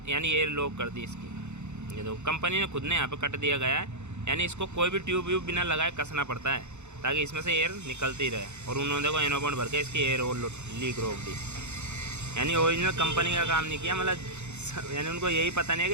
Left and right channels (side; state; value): left; late; 0.83 ms